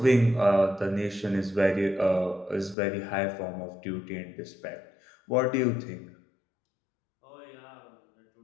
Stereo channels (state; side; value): drops out; right; at 2.8 s